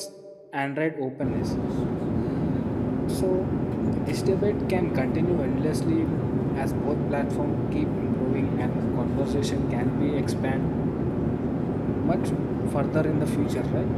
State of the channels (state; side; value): identical; both; correlation 1.00